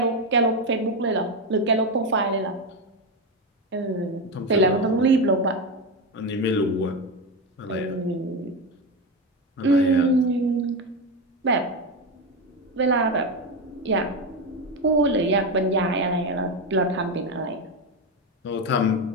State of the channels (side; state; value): both; normal; correlation 0.13